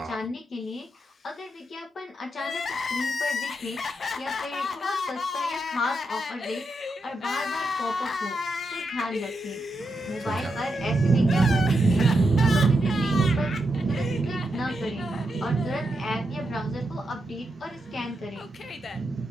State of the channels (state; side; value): normal; both; correlation 0.84